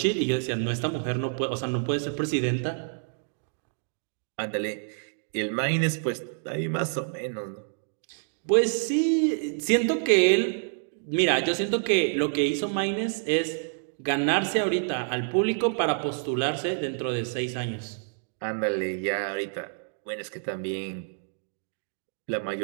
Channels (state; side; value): silent; left; digital silence